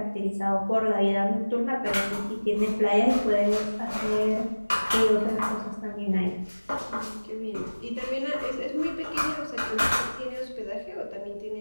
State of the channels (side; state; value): both; inverted; correlation -1.00